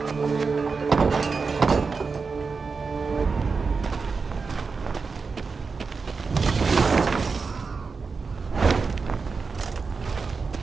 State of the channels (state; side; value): quieter; left; 4.8 dB